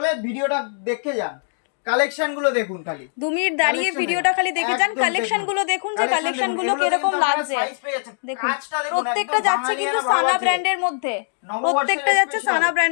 ভিডিওটা দেখে যান। কালেকশন গুলো দেখুন, খালি 2 মিনিট দাঁড়িয়ে ভিডিওটা খালি দেখে যান। কালেকশন গুলো দেখুন যে কালেকশন গুলো কিরকম লাগছে। দেখুন প্রত্যেকটা যাচ্ছে কিন্তু সানা ব্র্যান্ডের মধ্যে, প্রত্যেকটা যাচ্ছে সানা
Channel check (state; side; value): silent; right; digital silence